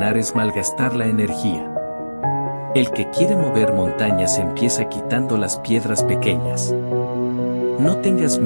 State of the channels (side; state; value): both; inverted; correlation -1.00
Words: es malgastar la energía. El que quiere mover montañas empieza quitando las piedras pequeñas. No tengas